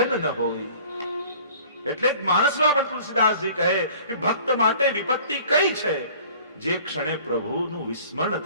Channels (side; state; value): both; inverted; correlation -0.49